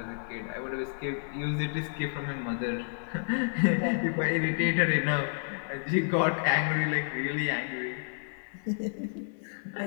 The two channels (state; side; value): silent; right; digital silence